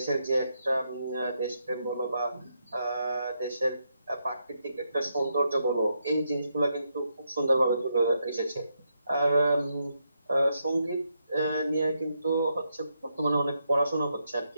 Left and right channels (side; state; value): both; inverted; correlation -0.81